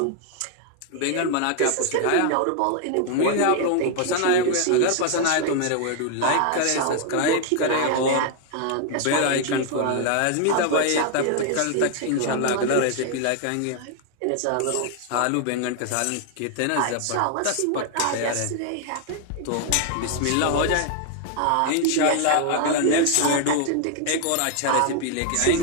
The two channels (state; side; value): different; both; correlation 0.00